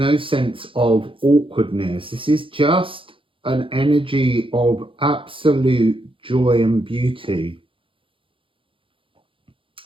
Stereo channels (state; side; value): late; left; 0.25 ms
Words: sense of awkwardness. This is just an energy of absolute joy and beauty.